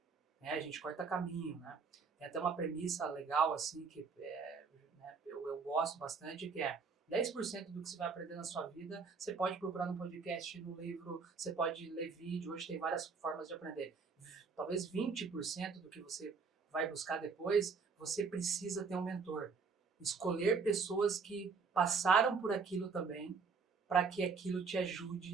A gente corta caminho, né? Tem até uma premissa legal, assim, que eu gosto bastante, que é 10% do que você vai aprender na sua vida, você pode procurar no podcast, no livro, você pode ler vídeo, hoje tem várias formas de aprender. Talvez 20% do que você vai buscar depois, você precisa ter um mentor. Escolher pessoas que passaram por aquilo também, para que aquilo te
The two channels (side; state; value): left; quieter; 5.0 dB